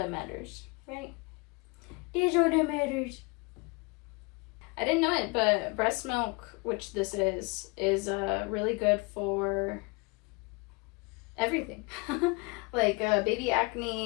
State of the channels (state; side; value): quieter; right; 28.3 dB